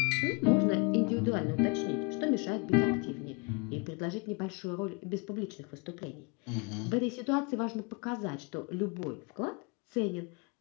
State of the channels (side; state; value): right; quieter; 30.7 dB